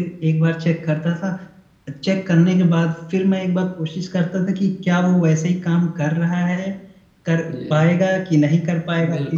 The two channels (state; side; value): identical; both; correlation 1.00